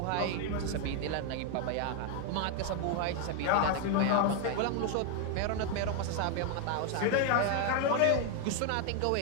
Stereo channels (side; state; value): both; different; correlation 0.00